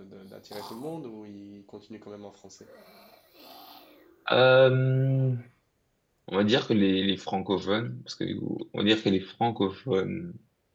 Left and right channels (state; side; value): identical; both; correlation 1.00